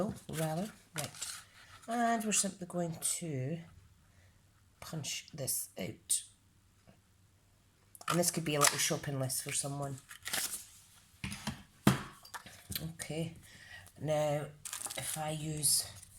rather, right. And we're simply going to punch this out. And this could be a little shopping list for someone. Okay, now if I use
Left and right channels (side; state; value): both; identical; correlation 1.00